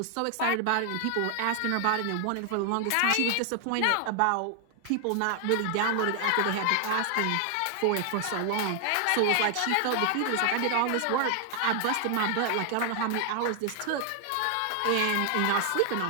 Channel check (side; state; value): both; different; correlation 0.00